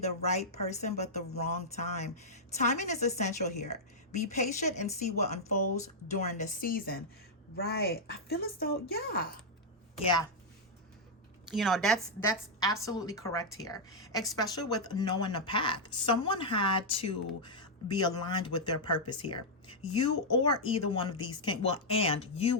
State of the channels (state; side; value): normal; both; correlation -0.06